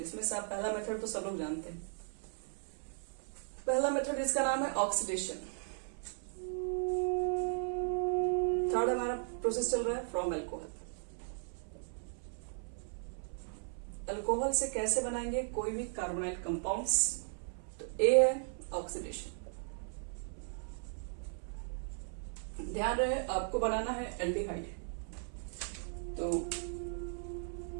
से आप पहला मेथड तो सब लोग जानते हैं। पहला मेथड इसका नाम है ऑक्सीडेशन। थर्ड हमारा प्रोसेस चल रहा है फ्रॉम एल्कोहल। एल्कोहल से कैसे बनाएंगे कोई भी कार्बोनाइल कंपाउंड्स, तो ए है ऑक्सीडेशन। ध्यान रहे आपको बनाना है एल्डिहाइड, तो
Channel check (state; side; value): silent; left; 53 dB below the other